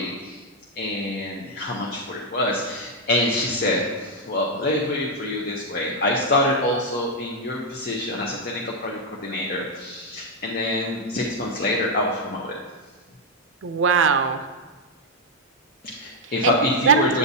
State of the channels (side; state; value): both; normal; correlation -0.01